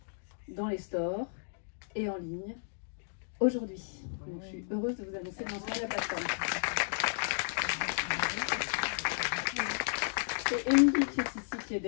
dans les stores et en ligne aujourd'hui. Donc, je suis heureuse de vous annoncer le lancement de la plateforme. C'est Émilie qui est ici, qui est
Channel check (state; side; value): silent; right; digital silence